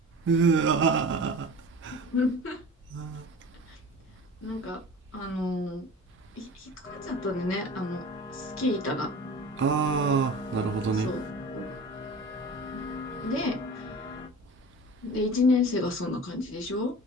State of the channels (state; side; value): normal; both; correlation 0.38